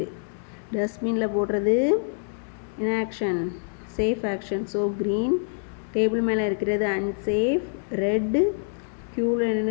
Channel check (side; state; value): right; silent; 59 dB below the other